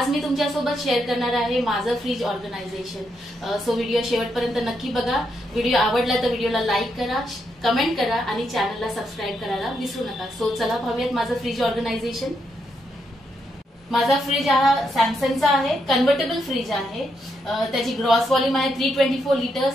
मी तुमच्यासोबत शेअर करणार आहे माझं फ्रीज ऑर्गनायझेशन. सो व्हिडिओ शेवटपर्यंत नक्की बघा. व्हिडिओ आवडला तर व्हिडिओला लाईक करा, कमेंट करा आणि चॅनलला सबस्क्राईब करायला विसरू नका. सो चला पाहूयात माझं फ्रीज ऑर्गनायझेशन. माझा फ्रीज हा सॅमसंगचा आहे, कन्व्हर्टेबल फ्रीज आहे. त्याची ग्रॉस व्हॉल्यूम आहे 324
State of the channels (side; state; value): both; normal; correlation 0.80